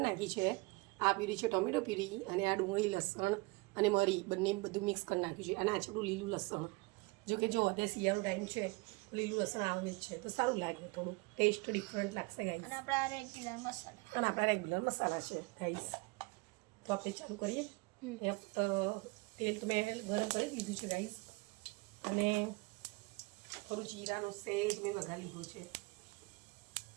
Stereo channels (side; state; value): left; quieter; 25.8 dB